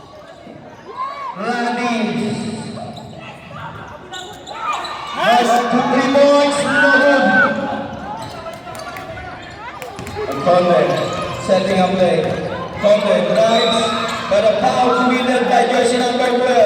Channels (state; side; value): identical; both; correlation 1.00